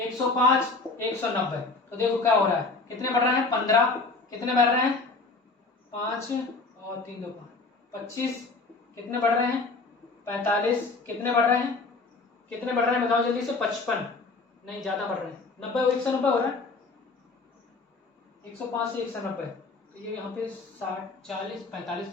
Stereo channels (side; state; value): right; quieter; 3.8 dB